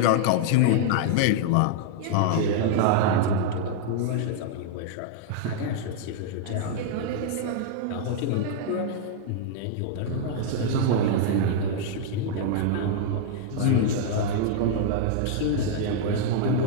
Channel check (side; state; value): both; different; correlation -0.01